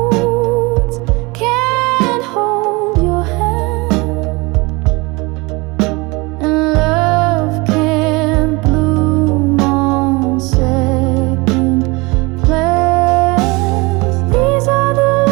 can't hold your hand, and love can't bloom on second plans. These are the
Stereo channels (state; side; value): quieter; left; 25.4 dB